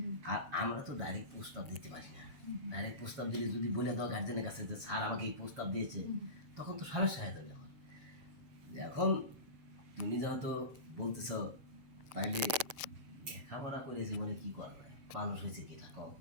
আর আমরা তো ডাইরেক্ট প্রস্তাব দিতে পারি না। ডাইরেক্ট প্রস্তাব দিলে যদি বলে দাও গার্জেনের কাছে যে স্যার আমাকে এই প্রস্তাব দিয়েছে, তখন তো সমস্যা হয়ে যাবে। এখন তুমি যেহেতু বলতেছ, তাইলে লেখাপড়া করে জীবনে কি করবে, মানুষ হয়েছে কি কম।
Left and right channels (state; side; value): late; left; 7.2 ms